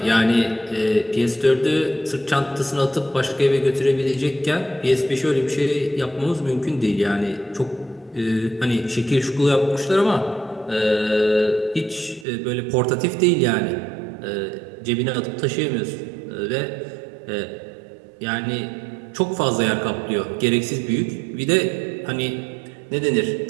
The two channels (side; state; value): left; drops out; at 12.2 s